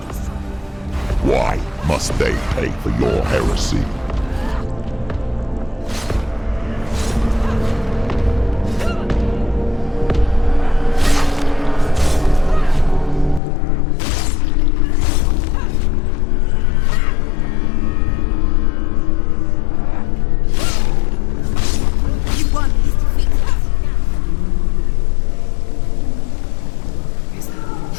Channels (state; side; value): drops out; right; at 13.4 s